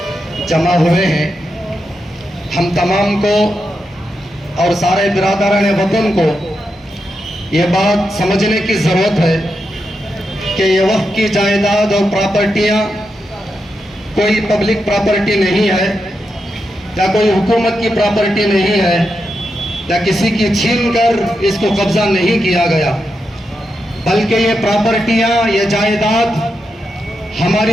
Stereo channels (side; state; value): both; normal; correlation 0.86